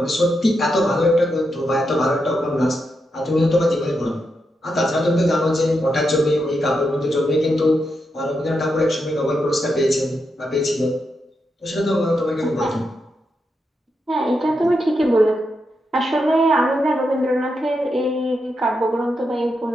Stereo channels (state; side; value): normal; both; correlation 0.84